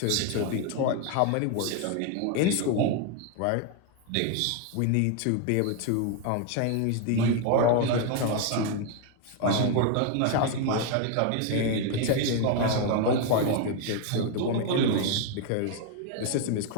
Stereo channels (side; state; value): both; different; correlation 0.01